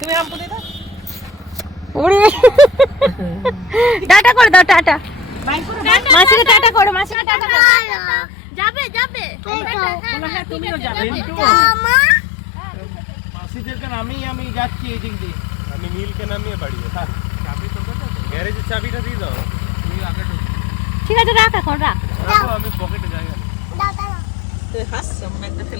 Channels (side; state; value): right; drops out; at 7.2 s